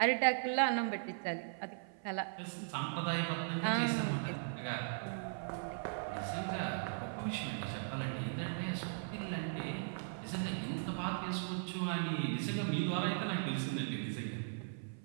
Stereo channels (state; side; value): silent; left; 52 dB below the other